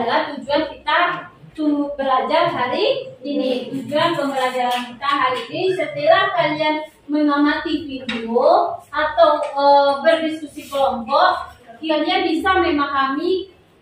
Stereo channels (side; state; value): both; identical; correlation 1.00